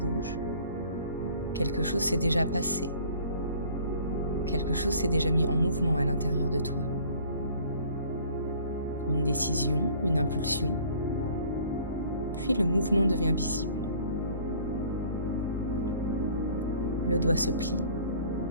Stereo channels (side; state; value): both; inverted; correlation -0.52